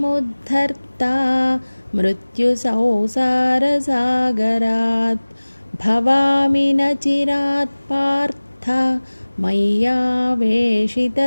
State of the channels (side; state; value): both; inverted; correlation -1.00